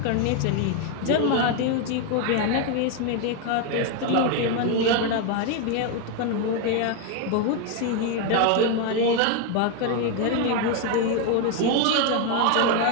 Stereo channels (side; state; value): both; different; correlation 0.01